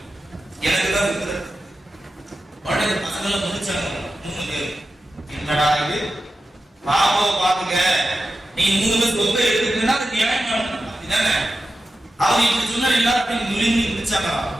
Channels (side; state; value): both; normal; correlation 0.92